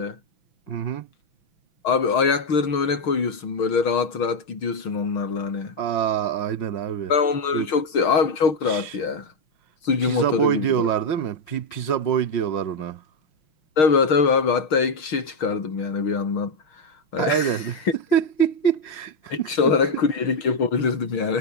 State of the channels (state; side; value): late; right; 6.5 ms